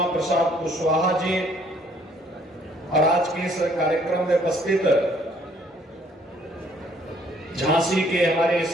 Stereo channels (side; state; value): both; normal; correlation 0.63